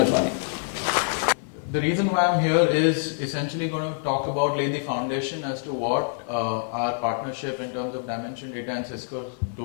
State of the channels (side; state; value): right; silent; 61 dB below the other